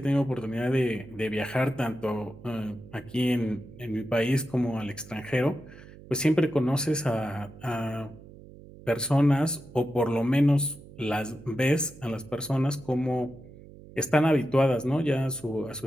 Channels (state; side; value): noise; right; hum, 19 dB below the sound